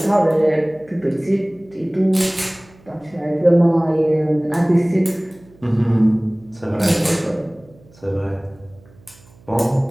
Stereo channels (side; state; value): right; noise; hum, 27 dB below the sound